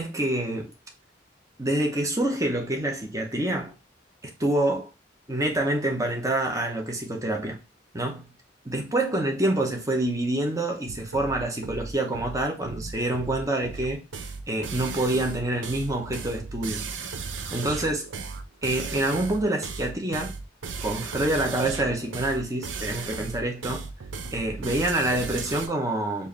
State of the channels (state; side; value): normal; both; correlation 0.57